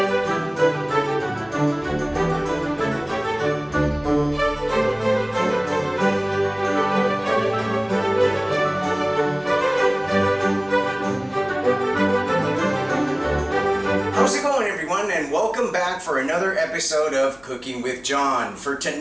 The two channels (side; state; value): left; noise; hum, 28 dB below the sound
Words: it going, everyone, and welcome back for another episode of Cooking with John. For